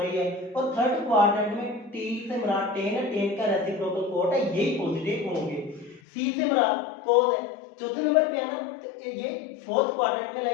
है। और थर्ड क्वाड्रेंट में टी से मुराद 10 है, 10 का रेसिप्रोकल कोट है, यही पॉजिटिव होंगे। सी से मुराद cos है, चौथे नंबर पे है ना, तो ये फोर्थ क्वाड्रेंट में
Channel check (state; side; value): drops out; right; at 6.0 s